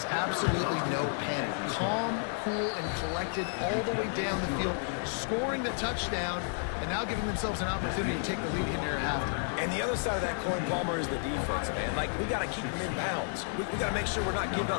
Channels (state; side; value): silent; right; 57 dB below the other